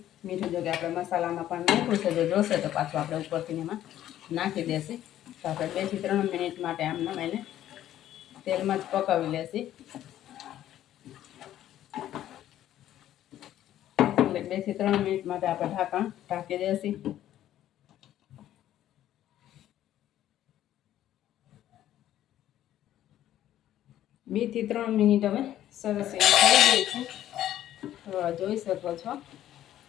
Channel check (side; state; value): right; quieter; 12.3 dB